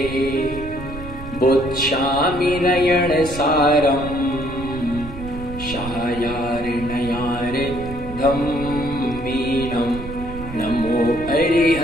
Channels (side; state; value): right; noise; rumble, 11 dB below the sound